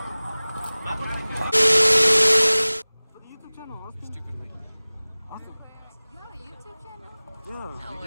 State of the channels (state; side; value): inverted; both; correlation -0.99